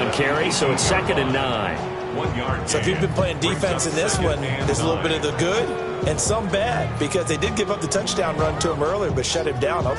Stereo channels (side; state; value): both; identical; correlation 1.00